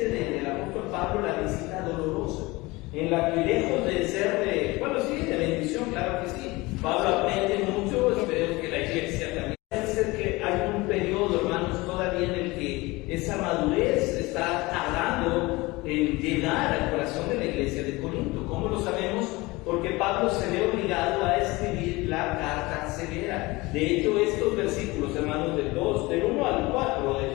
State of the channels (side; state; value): right; quieter; 22.3 dB